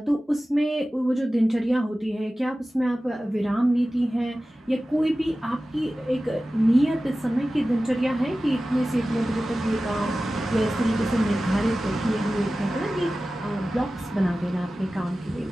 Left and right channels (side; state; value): both; normal; correlation 0.96